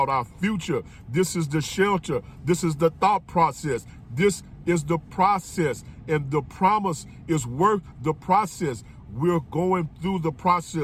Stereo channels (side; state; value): both; identical; correlation 1.00